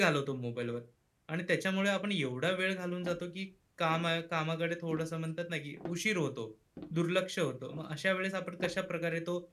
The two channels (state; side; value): identical; both; correlation 1.00